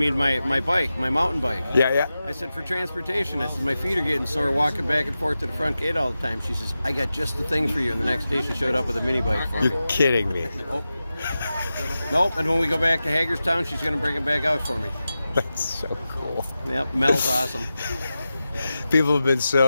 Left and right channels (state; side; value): inverted; both; correlation -0.93